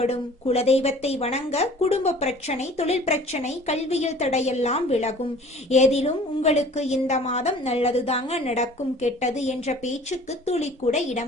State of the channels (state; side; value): normal; both; correlation 0.48